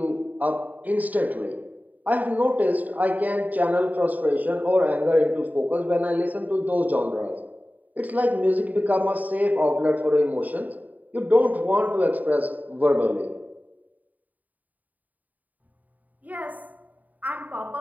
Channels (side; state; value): left; late; 0.078 ms